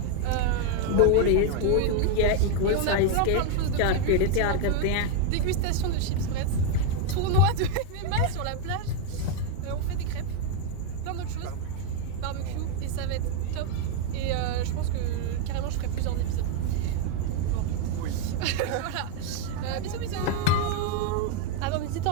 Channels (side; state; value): both; different; correlation 0.00